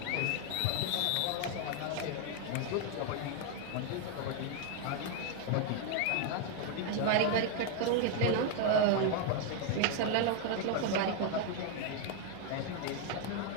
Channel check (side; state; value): both; different; correlation 0.00